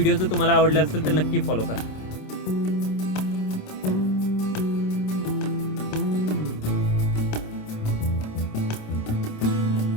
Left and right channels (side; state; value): right; late; 26 ms